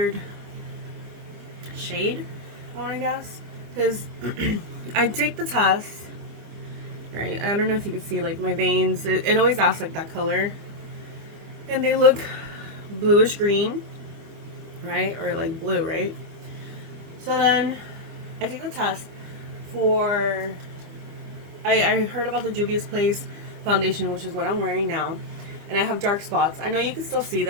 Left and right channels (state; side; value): late; left; 25 ms